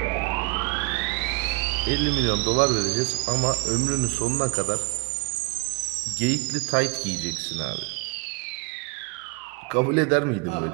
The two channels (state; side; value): quieter; left; 28.6 dB